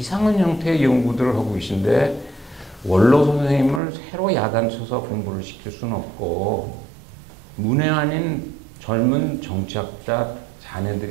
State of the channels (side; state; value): left; drops out; at 3.8 s